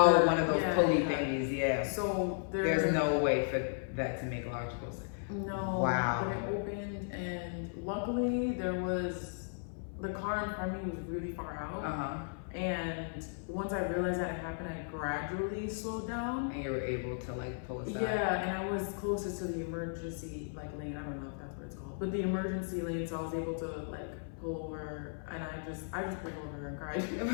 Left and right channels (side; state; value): right; silent; 54 dB below the other